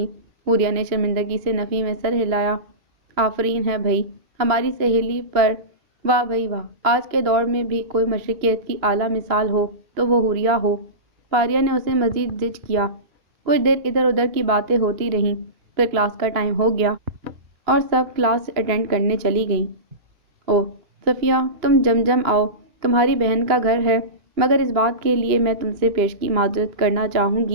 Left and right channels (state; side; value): late; left; 2.9 ms